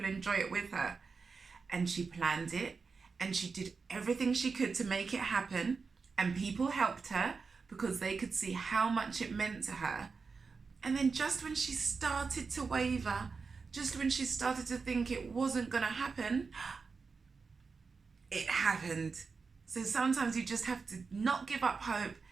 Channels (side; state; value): left; quieter; 4.8 dB